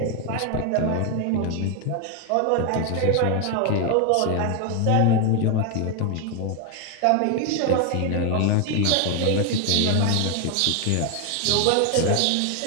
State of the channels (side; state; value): both; different; correlation 0.01